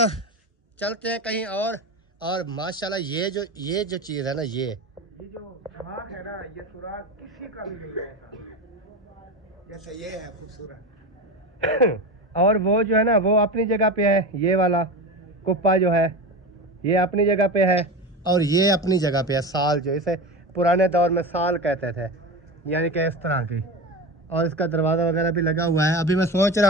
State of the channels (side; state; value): both; normal; correlation 0.24